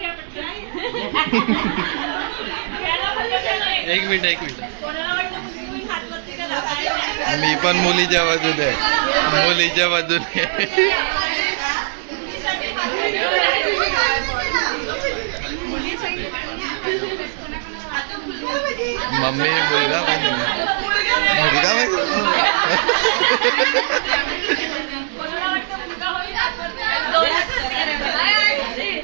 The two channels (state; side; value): silent; left; 66 dB below the other